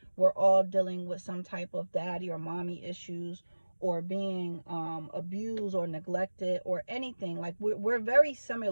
We're all dealing with some type of daddy or mommy issues, or being abused or neglected or anything. Like we're very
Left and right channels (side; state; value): both; inverted; correlation -1.00